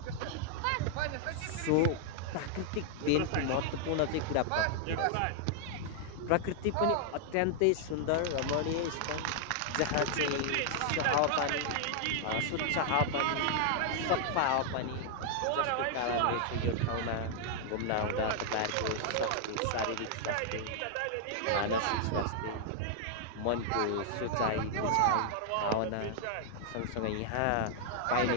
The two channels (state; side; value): different; both; correlation 0.00